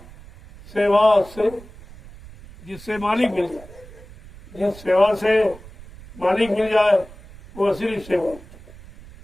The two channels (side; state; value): right; noise; rumble, 19 dB below the sound